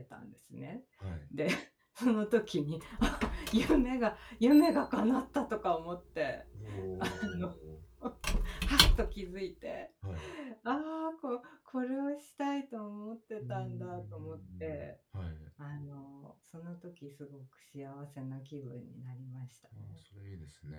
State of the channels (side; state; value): both; identical; correlation 1.00